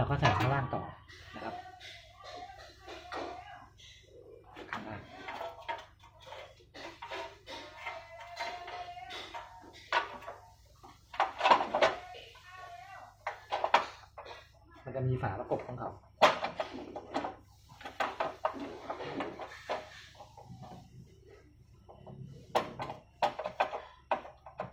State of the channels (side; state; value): both; identical; correlation 1.00